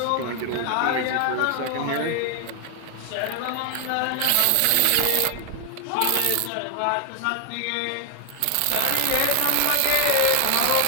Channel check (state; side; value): different; both; correlation 0.00